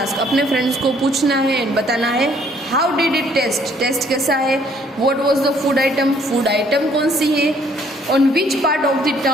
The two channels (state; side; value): normal; both; correlation 0.63